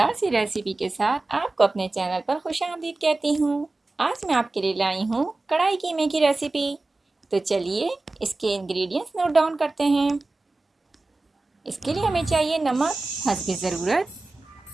सी रेसिपी के साथ आपको अपने चैनल पर खुशामदीद कहती हूँ। आज मैं आपके लिए लाई हूँ कढ़ाई कीमे की रेसिपी। तो चलिए इसके इंग्रेडिएंट्स नोट डाउन करते हैं। इसके लिए हमें चाहिए नमक हस्ब ज़रूरत,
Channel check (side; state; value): left; quieter; 3.2 dB